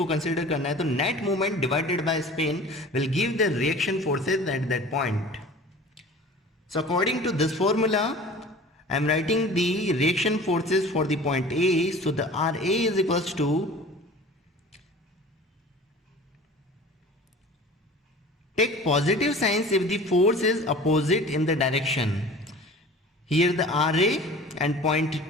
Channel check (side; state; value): both; normal; correlation 0.42